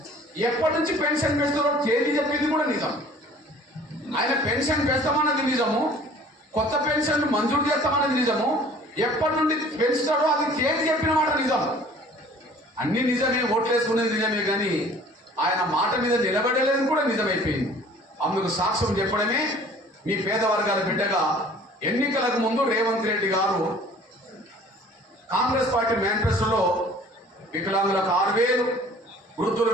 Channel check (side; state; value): both; normal; correlation 0.50